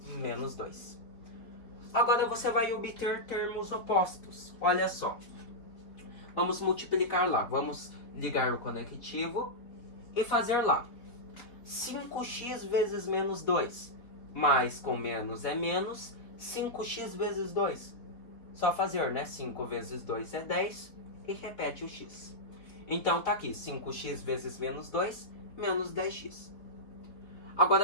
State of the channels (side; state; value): right; late; 4.1 ms